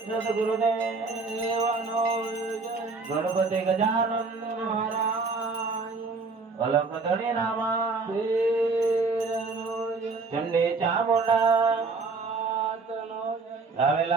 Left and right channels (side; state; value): left; quieter; 4.1 dB